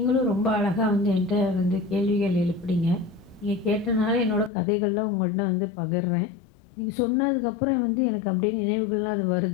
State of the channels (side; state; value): right; drops out; at 4.5 s